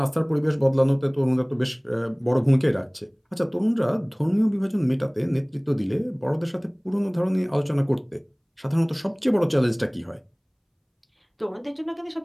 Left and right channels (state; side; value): identical; both; correlation 1.00